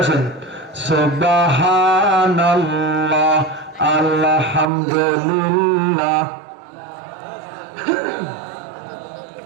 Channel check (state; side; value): drops out; left; at 4.7 s